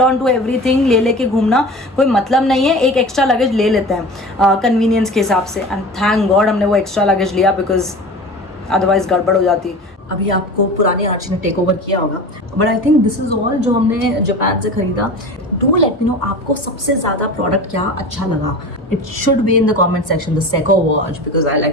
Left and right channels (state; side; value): normal; both; correlation 0.35